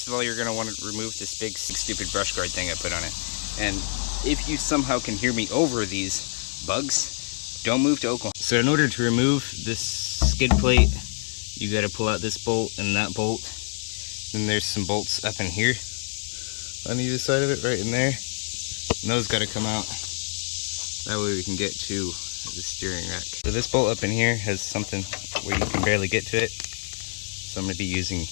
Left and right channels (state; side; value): silent; right; 61 dB below the other